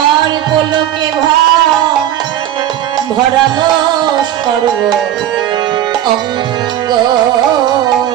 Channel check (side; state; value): left; quieter; 11.7 dB